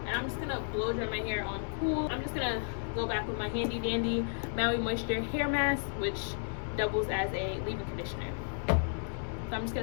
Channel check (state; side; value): silent; right; digital silence